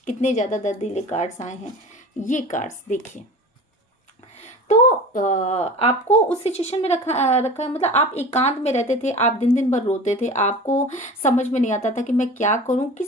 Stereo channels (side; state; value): both; normal; correlation 0.37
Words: हैं, ये कार्ड्स देखिए। तो आपको उस सिचुएशन में रखा मतलब आप एकांत में रहते थे, आप दिन दिन भर रोते थे, आपको समझ में नहीं आता था कि मैं क्या करूं,